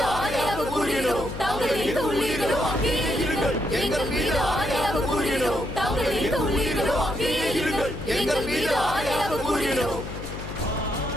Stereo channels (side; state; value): left; noise; hum, 9 dB below the sound